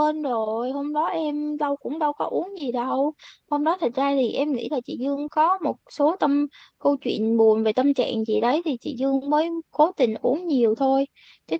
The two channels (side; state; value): both; identical; correlation 1.00